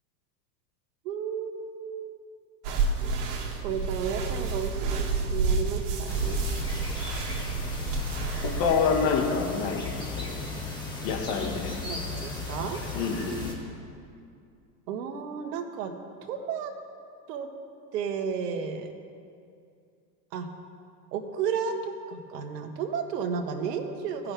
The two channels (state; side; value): normal; both; correlation 0.01